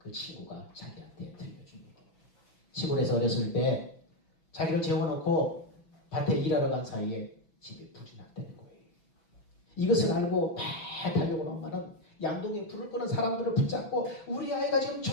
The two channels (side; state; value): right; late; 6.2 ms